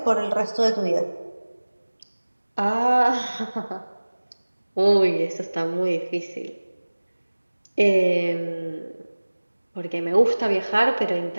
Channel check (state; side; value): inverted; both; correlation -1.00